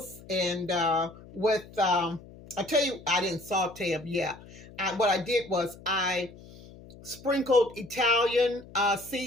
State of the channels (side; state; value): left; noise; hum, 19 dB below the sound